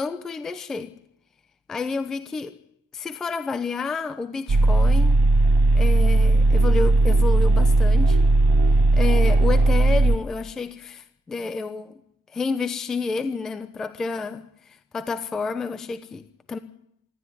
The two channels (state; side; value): normal; both; correlation 0.85